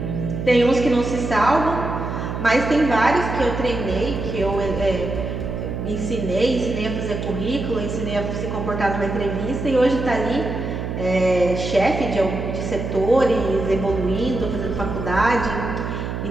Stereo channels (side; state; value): right; noise; hum, 4 dB below the sound